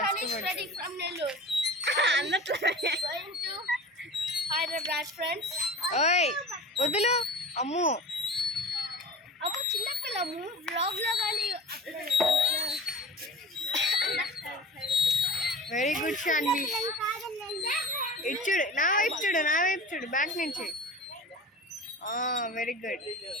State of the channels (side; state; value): both; normal; correlation 0.37